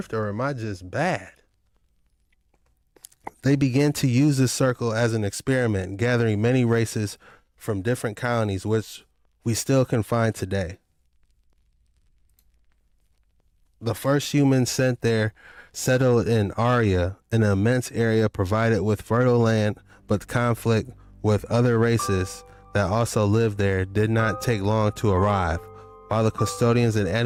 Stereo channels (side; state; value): both; identical; correlation 1.00